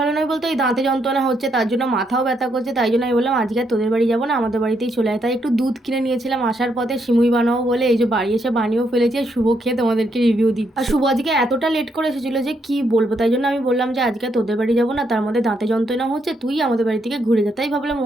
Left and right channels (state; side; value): normal; both; correlation 0.76